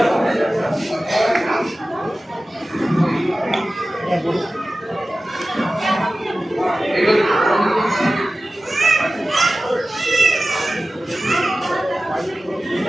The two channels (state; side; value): normal; both; correlation 0.96